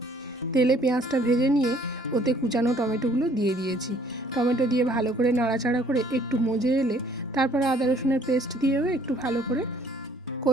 তেলে পেঁয়াজটা ভেজে নিয়ে ওতে কুচানো টমেটোগুলো দিয়ে দিয়েছি। টমেটো দিয়ে ভালো করে নাড়াচাড়া করে একটু মজে এলে তারপরে আদা রসুনের পেস্ট দিয়েও একটু ভালো করে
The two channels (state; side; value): normal; both; correlation 0.60